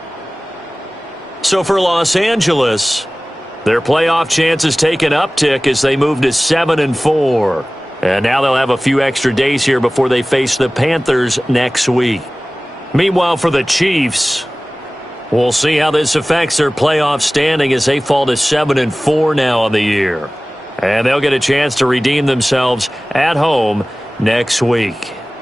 So for Los Angeles, their playoff chances take an uptick as they move to 7-4. And now they'll have a few extra days here before they face the Panthers next week. Meanwhile, for the Chiefs, we'll see how this affects their playoff standing as they fall to 7-4 now on the year. And they'll get a chance to redeem themselves at home next week.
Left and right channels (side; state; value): both; normal; correlation 0.98